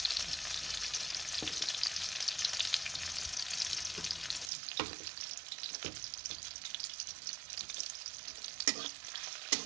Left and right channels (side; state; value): left; drops out; at 4.5 s